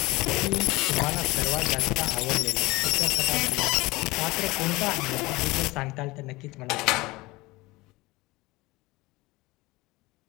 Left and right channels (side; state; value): right; quieter; 21.5 dB